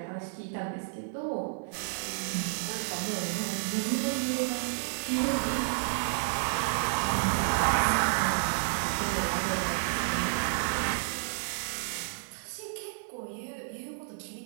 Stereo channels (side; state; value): left; silent; 57 dB below the other